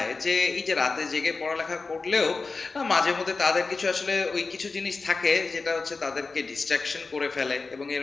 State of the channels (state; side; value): quieter; right; 4.1 dB